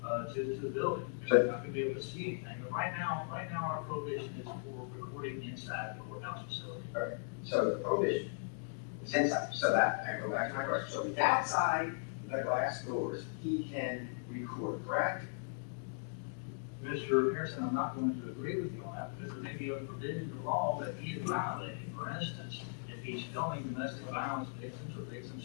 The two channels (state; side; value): silent; right; digital silence